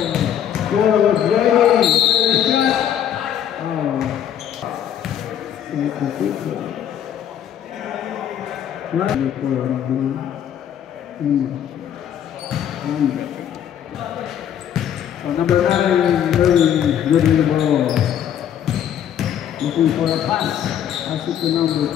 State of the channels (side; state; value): right; quieter; 9.8 dB